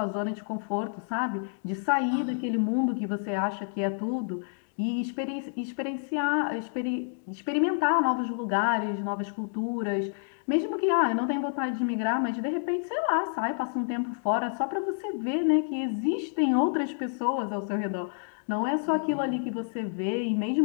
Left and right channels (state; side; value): silent; right; digital silence